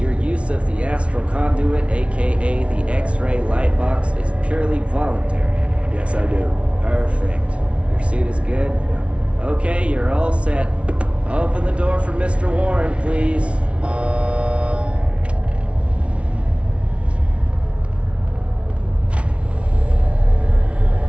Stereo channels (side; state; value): left; late; 0.061 ms